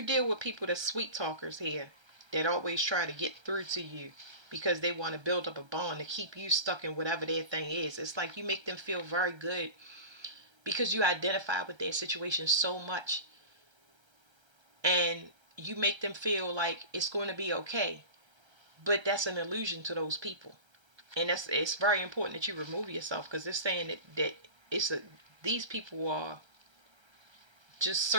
deal with people that's sweet talkers here, that always try to get through to you because they want to build up a bond to keep you stuck in whatever their thing is. It's like you make them feel very good because you identify with their situation so much, and you make them feel like it's going to be okay. But that's an illusion to those people. And it's very important that you remove yourself, because they're saying that it's a these people are just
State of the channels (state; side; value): late; left; 1.3 ms